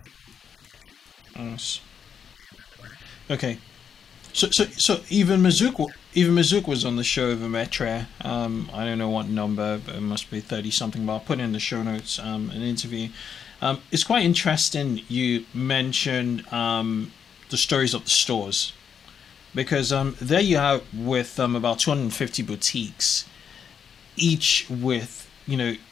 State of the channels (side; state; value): right; quieter; 7.5 dB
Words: connection between them and the brand. Okay. So even Mazouk was on the show of Emetria. I don't know what number, but it must be 30 something, but I'll put in the show notes an interview. It's quite interesting you mentioned the stories of the stores, because there you have with about 250 boutiques, each with